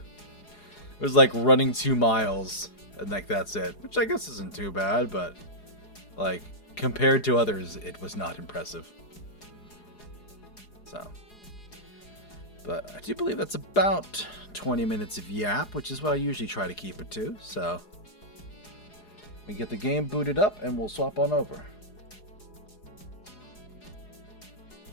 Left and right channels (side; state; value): right; late; 4.8 ms